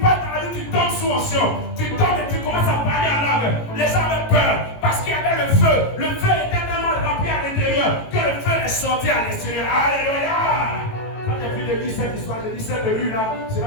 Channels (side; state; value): right; late; 18 ms